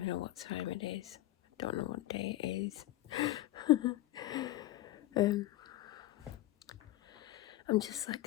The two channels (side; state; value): right; quieter; 16.2 dB